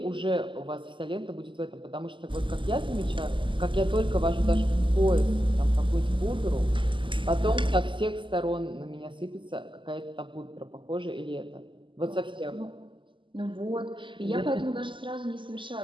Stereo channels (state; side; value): late; left; 0.24 ms